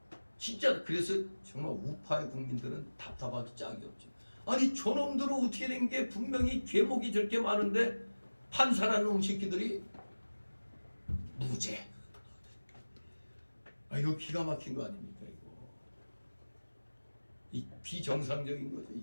진짜. 그래서 정말 우파의 국민들은 답답하기 짝이 없죠. 아니 저놈들은 어떻게 된 게, 분명히 죄목이 저렇게 많은데 판사라는 놈 새끼들이 무죄. 이거 기가 막힌 거 아닙니까? 이 비정상적인 거죠.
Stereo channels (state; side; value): inverted; both; correlation -1.00